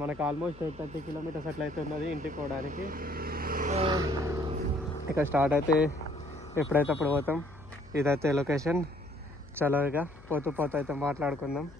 మనకు ఆల్మోస్ట్ 30 కిలోమీటర్స్ అట్లా అయితే ఉన్నది ఇంటికి పోవడానికి. ఇక స్టార్ట్ అయితే ఎప్పుడైతే అప్పుడు పోతాం. ఇదైతే లొకేషన్. చల్లగా పోతూ అయితే మాట్లాడుకుందాం.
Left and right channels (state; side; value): noise; left; hum, 21 dB below the sound